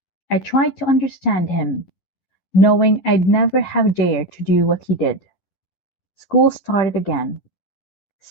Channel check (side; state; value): right; late; 11 ms